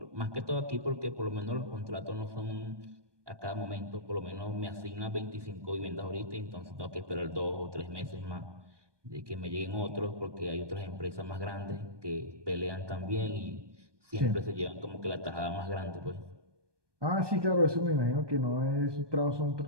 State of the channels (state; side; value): late; left; 1.2 ms